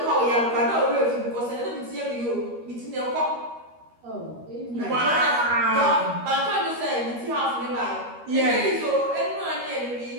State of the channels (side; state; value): left; late; 13 ms